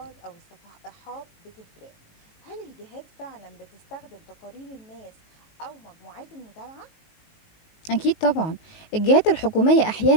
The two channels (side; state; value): right; late; 19 ms